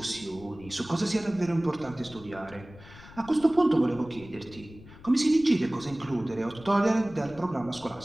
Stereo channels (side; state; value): left; noise; rumble, 19 dB below the sound